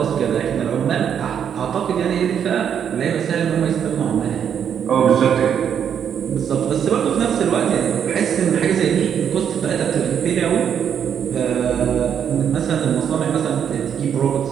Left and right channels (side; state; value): left; quieter; 8.3 dB